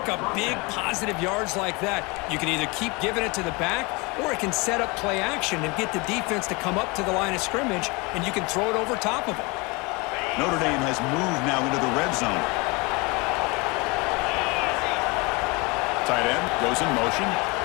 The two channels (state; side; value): quieter; right; 27.0 dB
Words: up big positive yards like that. You can either keep giving it to the back, or it can set up play action and get the defense to come up to the line of scrimmage, and you can throw it over top of them. Notre Dame has moved now into the red zone. Tight end goes in motion.